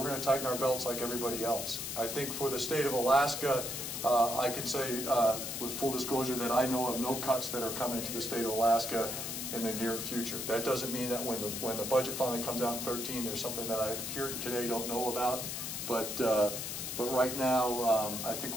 going to tighten our belts like everybody else. I think for the state of Alaska, I can say with full disclosure that I know of no cuts that are coming to the state of Alaska in the near future. That doesn't mean that when the budget finally comes out in 2013, there's something that I here today don't know about. But right now, I think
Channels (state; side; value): noise; left; hiss, 4 dB below the sound